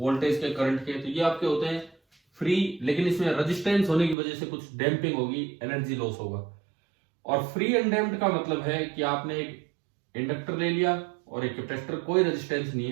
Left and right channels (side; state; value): left; drops out; at 4.2 s